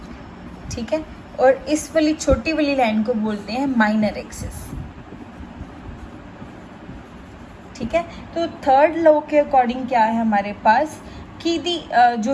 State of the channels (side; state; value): both; identical; correlation 1.00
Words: ठीक है, और इस वाली छोटी वाली लाइन को बोलते हैं माइनर एक्सिस। ठीक है, तो थर्ड लॉ के अकॉर्डिंग क्या है हमारे पास कि जो